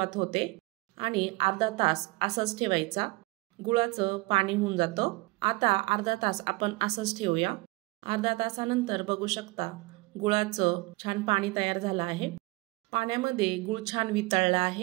होते आणि अर्धा तास असंच ठेवायचा। गुळाचं पाणी होऊन जातं। आता अर्धा तास आपण असंच ठेवूया। अर्धा तासानंतर बघू शकता गुळाचं छान पाणी तयार झालं आहे। पाण्यामध्ये गुळ छान वितळला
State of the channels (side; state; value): left; quieter; 23.3 dB